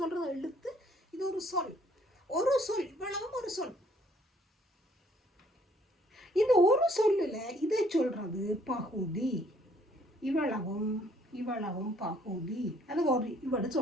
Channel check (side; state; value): both; normal; correlation 0.63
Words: சொல்கிறது எழுத்து. இது ஒரு சொல் இவ்வளவும் ஒரு சொல். இந்த ஒரு சொல்லில் இதை சொல்றது பகுதி. இவ்வளவும் பகுதி. அது ஒரு இவட